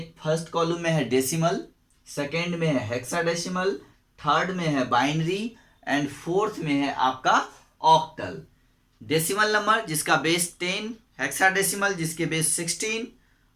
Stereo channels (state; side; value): identical; both; correlation 1.00